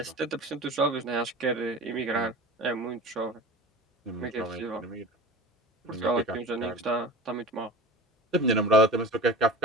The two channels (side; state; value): both; normal; correlation 0.36